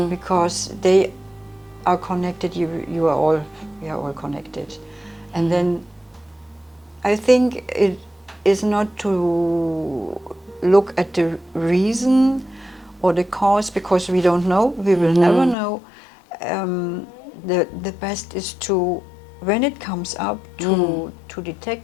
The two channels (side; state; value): right; drops out; at 15.6 s